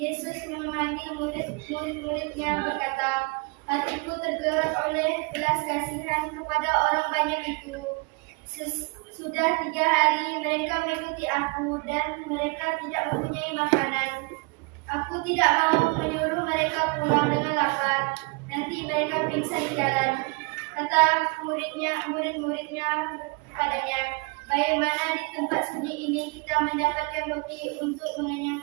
memanggil murid-muridnya berkata, hatiku tergerak oleh belas kasihan kepada orang banyak itu. Sudah 3 hari mereka mengikuti aku dan mereka tidak mempunyai makanan. Aku tidak mau menyuruh mereka pulang dengan lapar. Nanti mereka pingsan di jalan. Kata murid-muridnya padanya, bagaimana di tempat sunyi ini kita mendapatkan roti untuk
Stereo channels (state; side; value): quieter; left; 30.1 dB